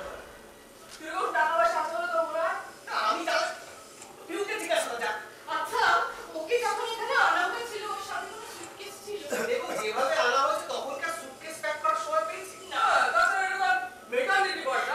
কিরকম টাকা পয়সা আছে বলো তোমরা? আমি যাই, পিউকে জিজ্ঞাসা কর যা। আচ্ছা ওকে যখন এখানে আনা হয়েছিল ওর সাথে কোনো সুটকেস ছিল? দেখো যেভাবে আনা হয়েছে তখনকার সুটকেস প্যাক করার সময় পেয়েছি না তাছাড়া এটা মেকানিক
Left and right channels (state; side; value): identical; both; correlation 1.00